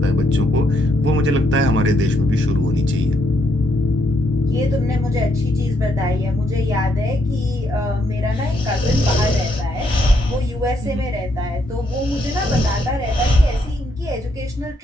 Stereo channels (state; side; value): normal; both; correlation 0.75